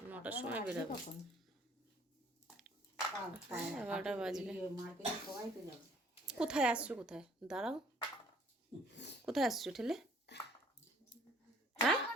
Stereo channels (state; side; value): normal; both; correlation 0.58